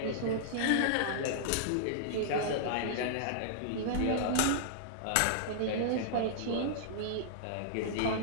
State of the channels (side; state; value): both; different; correlation -0.02